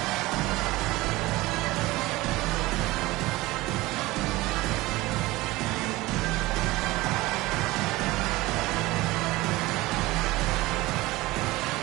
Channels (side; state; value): left; quieter; 19.8 dB